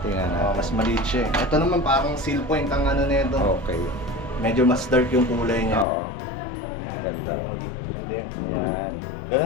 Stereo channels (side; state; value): right; drops out; at 5.9 s